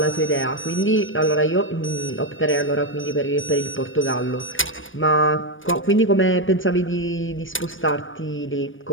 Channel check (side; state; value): right; late; 0.57 ms